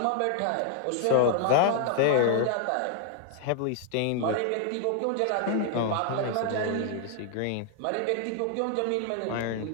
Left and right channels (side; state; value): both; different; correlation 0.00